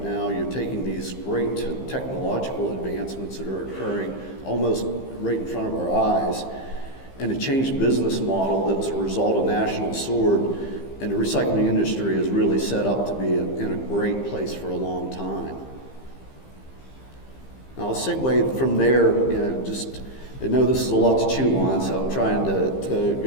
now, you're taking these great technological advancements that are occurring almost right in front of our eyes, and a changed business model that was a result of National Sword, and the recycling industry is really set up to be in a great place for a long time. Now I'll segue from there, I know this is a lot to chew on, so I'm trying to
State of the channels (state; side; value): late; right; 15 ms